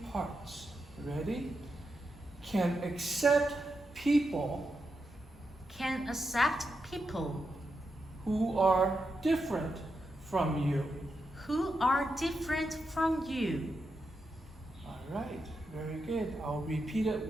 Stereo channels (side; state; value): both; normal; correlation 0.86